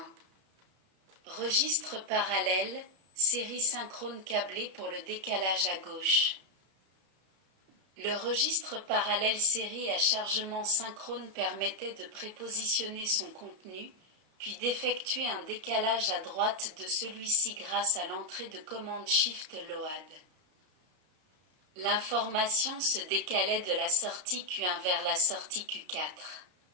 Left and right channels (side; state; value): left; late; 32 ms